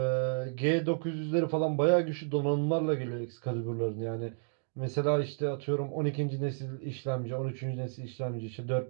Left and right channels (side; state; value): left; silent; 57 dB below the other